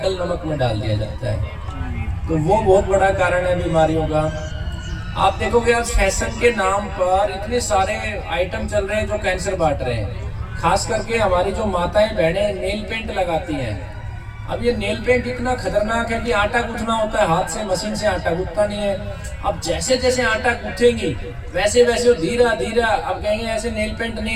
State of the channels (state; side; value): identical; both; correlation 1.00